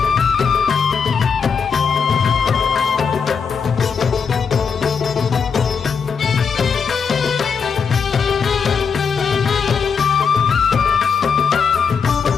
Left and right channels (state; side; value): quieter; right; 6.1 dB